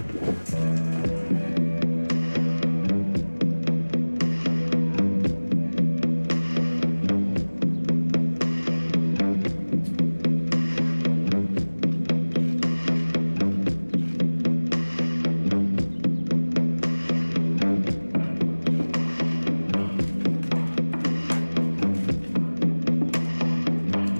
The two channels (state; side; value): inverted; both; correlation -1.00